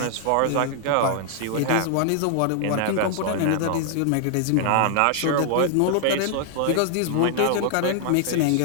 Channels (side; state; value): both; different; correlation -0.01